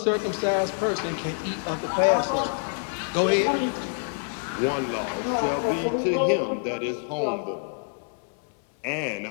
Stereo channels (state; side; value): silent; right; 61 dB below the other